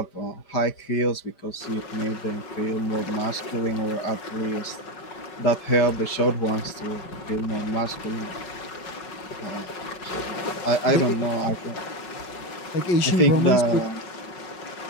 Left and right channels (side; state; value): right; late; 5.4 ms